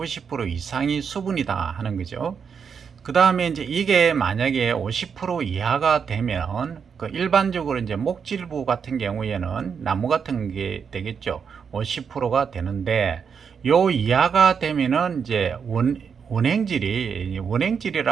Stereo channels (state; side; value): quieter; left; 6.6 dB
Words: 이상이 수분이다 하는 거죠. 그 다음에 이제 이게 만약에 50% 이하가 되면 그 일반적으로 이제 목질부 같은 경우에는 나무 같은 게 되겠죠. 50%가 되는데 요 이하가 되면은 이제